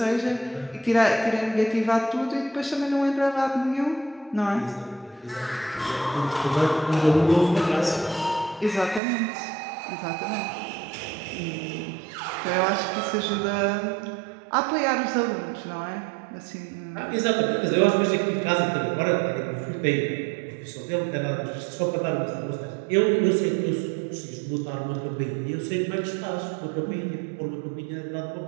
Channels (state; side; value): drops out; left; at 9.0 s